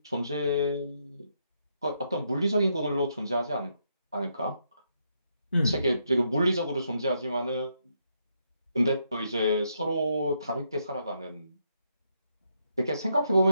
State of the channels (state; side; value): inverted; both; correlation -0.78